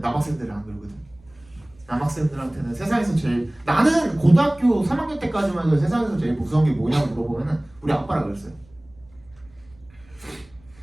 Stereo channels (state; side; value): noise; right; rumble, 28 dB below the sound